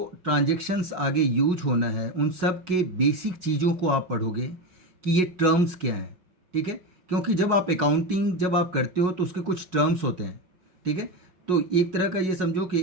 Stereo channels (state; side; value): late; left; 5.5 ms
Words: ट्रांजैक्शंस आगे यूज होना है उन सब के बेसिक चीज़ों को आप पढ़ोगे कि ये टर्म्स क्या हैं। ठीक है, क्योंकि जब आप अकाउंटिंग जब आप करते हो तो उसके कुछ टर्म्स होते हैं। ठीक है, तो एक तरह का ये समझो कि